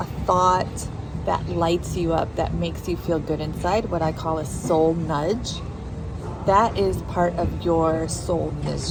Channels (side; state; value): both; identical; correlation 1.00